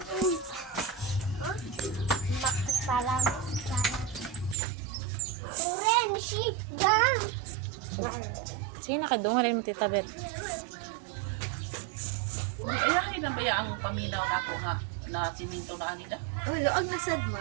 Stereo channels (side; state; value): left; drops out; at 4.5 s